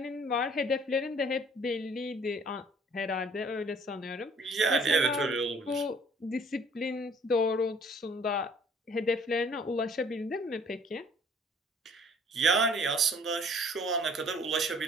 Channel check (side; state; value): both; normal; correlation 0.56